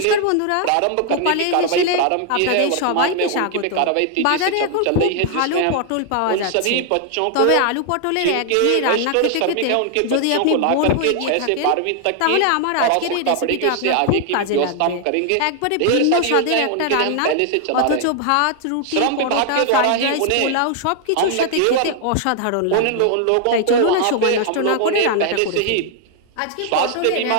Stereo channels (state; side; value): different; both; correlation 0.00